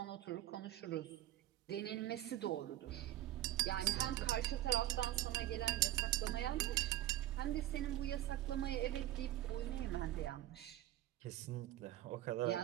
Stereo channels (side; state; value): left; quieter; 14.2 dB